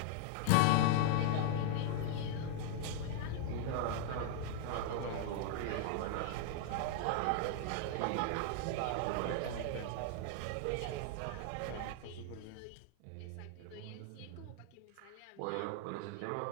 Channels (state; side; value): different; both; correlation 0.00